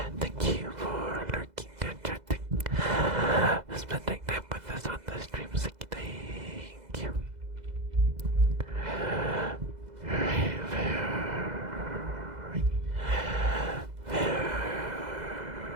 Thank you for lurking and chatting. Spending time with us on the stream. Thank you. Very,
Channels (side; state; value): left; late; 2.0 ms